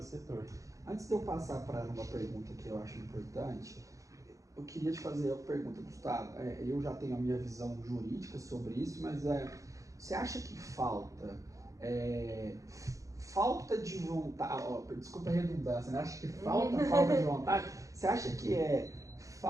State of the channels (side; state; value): left; late; 0.16 ms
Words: Antes de eu passar para uma pergunta que eu acho importante, eu queria te fazer uma pergunta, Gustavo. Eu já tenho a minha visão jurídica sobre isso, mas você acha que falta de vontade, desculpa a redundância, né? Acha que falta de vontade? Você acha que